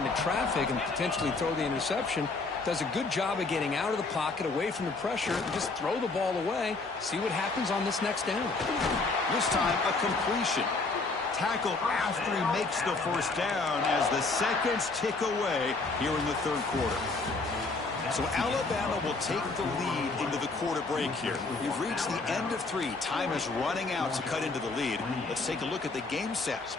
traffic and potentially throw the interception. Does a good job of getting out of the pocket, away from the pressure, and just throw the ball away. See what happens on this next down. This time, a completion. Tackle after he makes the 1st down as the seconds tick away here in the 3rd quarter. So Alabama will take the lead into the quarter break here. We've reached the end of 3. Time is running out to cut into the lead. Let's take a look at the game sets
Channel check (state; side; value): quieter; right; 3.7 dB